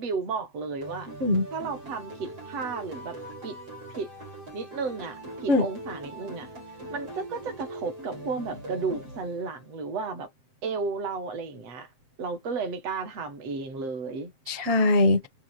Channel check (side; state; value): left; late; 7.6 ms